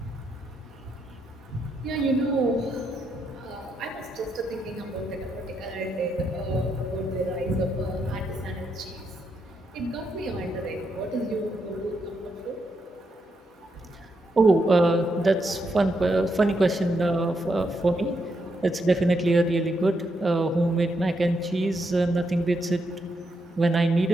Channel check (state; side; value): normal; both; correlation 0.80